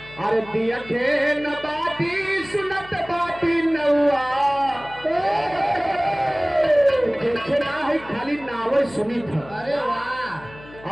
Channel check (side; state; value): left; noise; hum, 20 dB below the sound